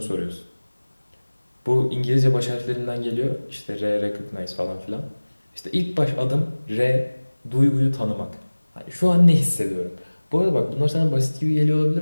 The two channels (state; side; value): inverted; both; correlation -1.00